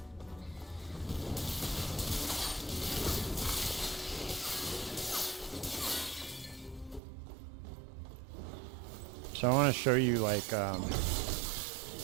So I want to show you like, I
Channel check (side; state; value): left; drops out; at 7.0 s